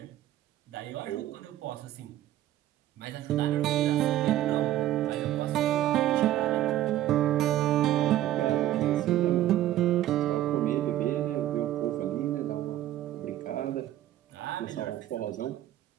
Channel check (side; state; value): left; quieter; 13.4 dB